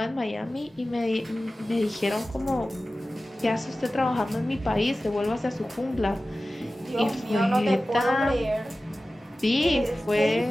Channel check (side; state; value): both; normal; correlation 0.96